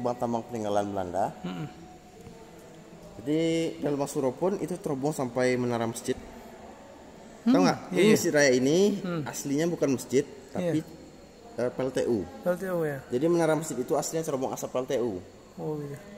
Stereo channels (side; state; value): both; identical; correlation 1.00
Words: tambang peninggalan Belanda. Jadi dan lubang Suro pun itu terhubung sampai menara masjid. Tahu nggak? Iya. Ini Masjid Raya ini aslinya bukan masjid, tapi PLTU. PLTU ya. Jadi menara masjid itu aslinya terhubung asap PLTU. Oh iya.